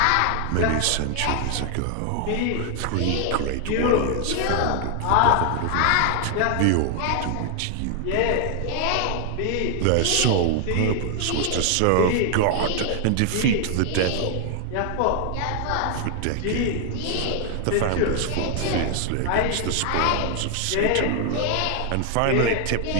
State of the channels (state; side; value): different; both; correlation 0.00